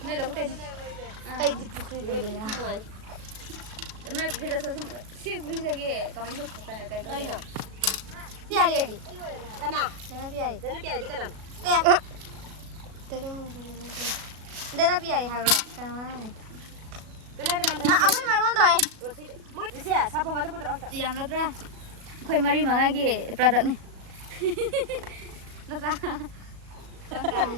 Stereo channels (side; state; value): left; late; 37 ms